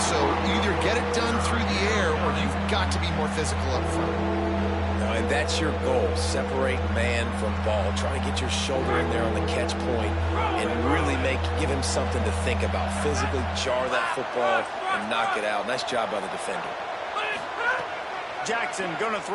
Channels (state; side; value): identical; both; correlation 1.00